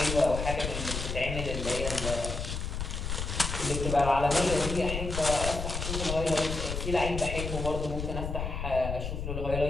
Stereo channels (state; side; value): noise; left; rumble, 4 dB below the sound